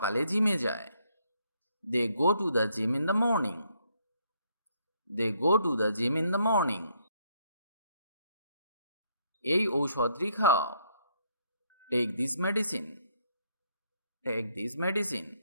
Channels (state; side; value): inverted; both; correlation -0.71